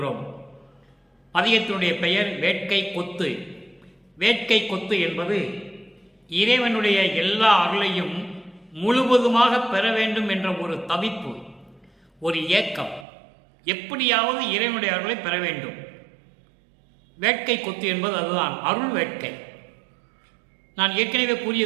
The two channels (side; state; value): left; drops out; at 13.1 s